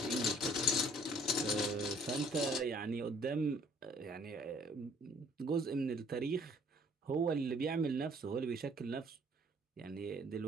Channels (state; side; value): normal; both; correlation 0.59